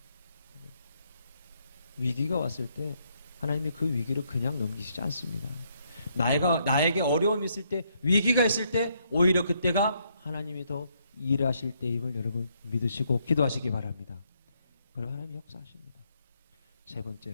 위기가 왔을 때 하나님이 그 위기를 그냥 넘기시지 않습니다. 나에게 어려움이 있을 때 위기가 있을 때 오히려 그때가 하나님이 더 일하실 때임을 여러분 믿으시고 기도하시기 바랍니다. 그럼 하나님이 역사하십니다. 세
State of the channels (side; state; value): both; inverted; correlation -0.74